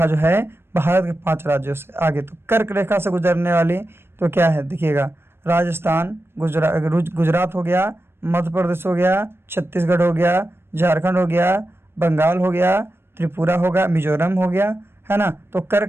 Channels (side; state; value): left; late; 0.12 ms